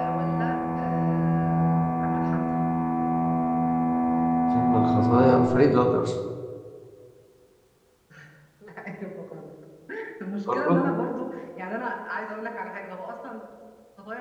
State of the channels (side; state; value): both; identical; correlation 1.00